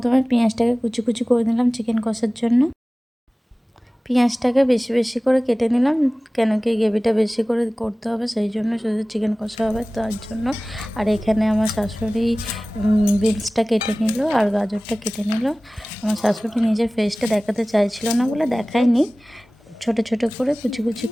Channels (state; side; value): normal; both; correlation 0.98